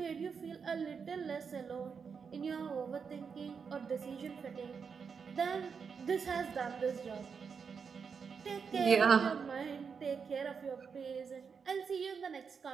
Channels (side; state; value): left; quieter; 6.0 dB